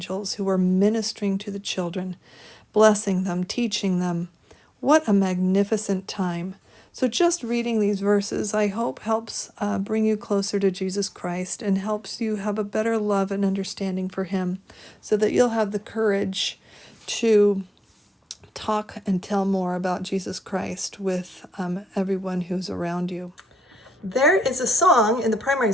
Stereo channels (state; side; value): normal; both; correlation 0.90